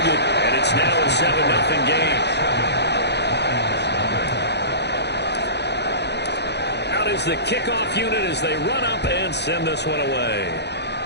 And it's now a 7-0 game. Out is the kickoff unit as they run up and send this one away.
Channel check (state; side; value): late; right; 0.49 ms